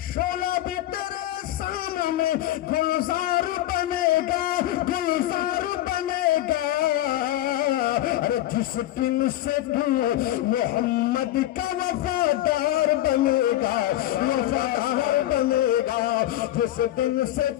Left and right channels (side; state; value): right; quieter; 14.3 dB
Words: شعلہ بھی تیرے سامنے گلزار بنے گا، گلزار بنے گا۔ ارے جس دن سے تو محمد کا وفادار بنے گا، وفادار بنے گا، جس دن سے